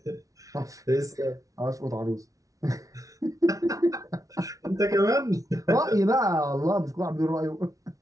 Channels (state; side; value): late; left; 0.17 ms